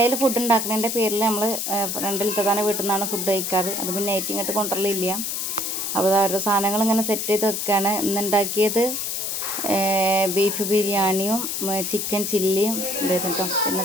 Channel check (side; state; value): left; noise; hiss, 2 dB below the sound